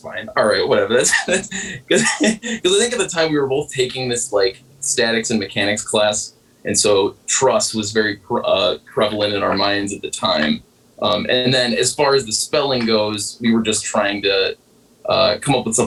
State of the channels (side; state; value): both; identical; correlation 1.00